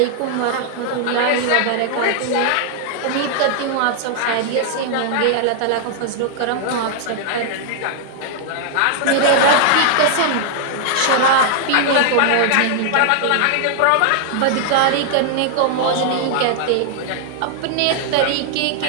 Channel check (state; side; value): different; both; correlation 0.00